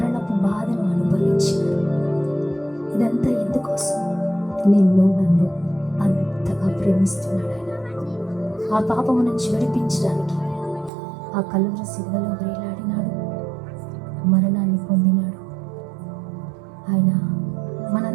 బాధను అనుభవించినాడు. ఇదంతా ఎందుకోసం? నిన్ను నన్ను అంతగా ప్రేమిస్తున్నాడు ఆయన. ఆ పాపము నుంచి విడిపించడానికి ఆ కలువరి సిలువలో వేలాడినాడు, మరణాన్ని పొందినాడు. ఆయన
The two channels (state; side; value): drops out; left; at 10.9 s